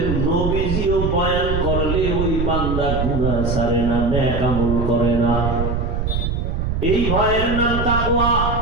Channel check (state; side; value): noise; right; rumble, 1 dB below the sound